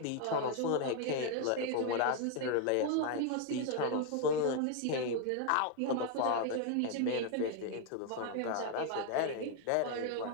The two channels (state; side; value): different; both; correlation 0.01